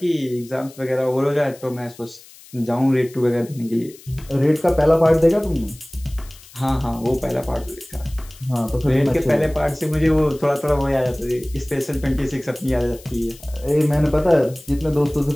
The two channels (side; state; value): left; noise; hiss, 22 dB below the sound